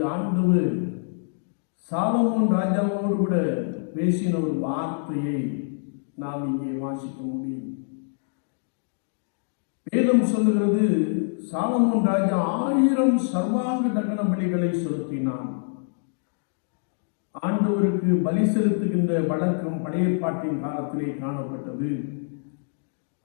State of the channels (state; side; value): silent; right; digital silence